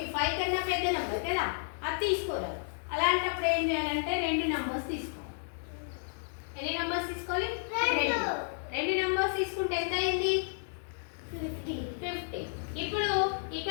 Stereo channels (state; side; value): silent; right; digital silence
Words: కన్నా పెద్ద నెంబర్ కదా, అది తీసుకోలేదు. అలాంటప్పుడు ఏం చేయాలంటే 2 నెంబర్స్ తీసుకోవాలి. ఎన్ని నెంబర్స్ తీసుకోవాలి? 2 నెంబర్స్ తీసుకుంటే ఎంత అయింది? 50. ఇప్పుడు